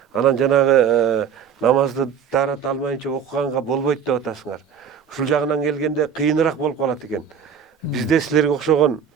Анан жанагы намазды тарата алмайынча окуганга болбойт деп атасыңар. Ушул жагынан келгенде кыйыныраак болуп калат экен. Бизде силерге окшогон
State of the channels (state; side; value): quieter; left; 7.4 dB